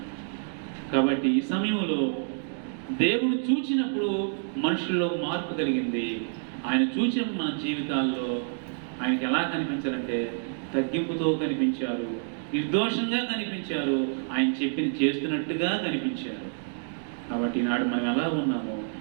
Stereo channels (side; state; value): left; silent; digital silence